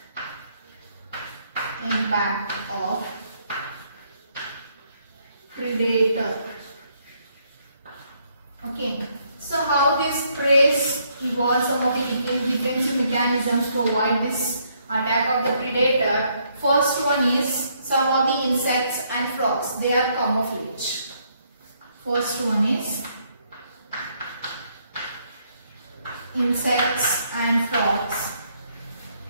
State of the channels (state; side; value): inverted; both; correlation -0.71